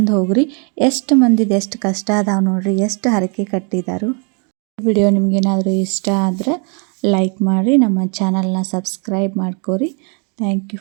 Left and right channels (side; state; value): left; quieter; 36.6 dB